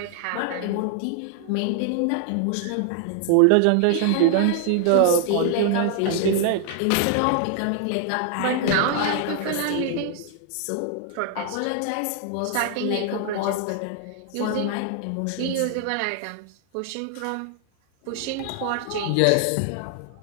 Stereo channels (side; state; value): both; different; correlation 0.00